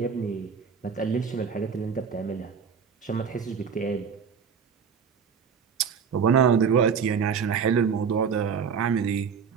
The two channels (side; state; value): left; quieter; 6.6 dB